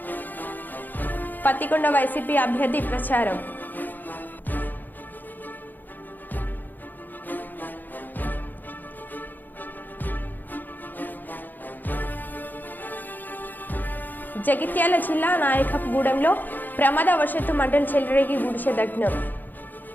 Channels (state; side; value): late; right; 0.087 ms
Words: పత్తికొండ వైసీపీ అభ్యర్థి ప్రచారం. జగిత్యాల జిల్లా నాయకగూడెంలో ప్రమాదవశాత్తు మంటలు చెలరేగి గుడిసె దగ్నం.